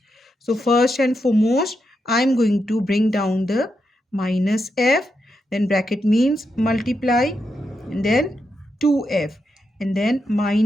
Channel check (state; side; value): normal; both; correlation 0.84